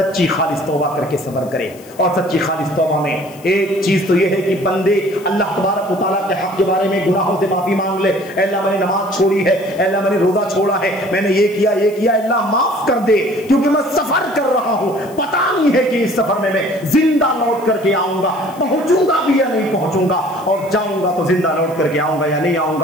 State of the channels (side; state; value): left; noise; hiss, 23 dB below the sound